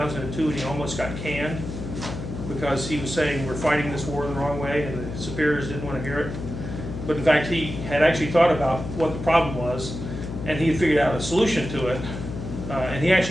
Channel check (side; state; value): left; noise; hum, 7 dB below the sound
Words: and he almost got canned because he was saying we're fighting this war the wrong way, and the superiors didn't want to hear it. But in fact, he had actually thought about what the problem was, and he had figured out a solution to it, and he